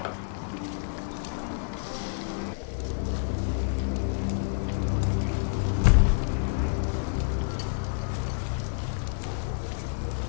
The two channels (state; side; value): silent; right; digital silence